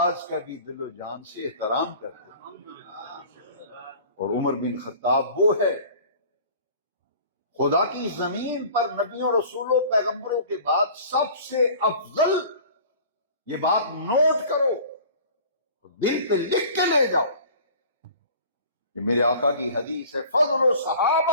کا بھی دل و جان سے احترام کرتے ہیں۔ اور عمر بن خطاب وہ ہے، خدا کی زمین پر نبیوں، رسولوں، پیغمبروں کے بعد سب سے افضل، یہ بات نوٹ کرو، دل پہ لکھ کے لے جاؤ، کہ میرے آقا کی حدیث ہے، فضل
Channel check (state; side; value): inverted; both; correlation -0.44